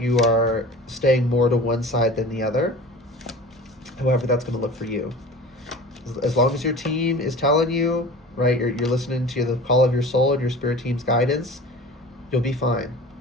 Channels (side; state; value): both; normal; correlation 0.38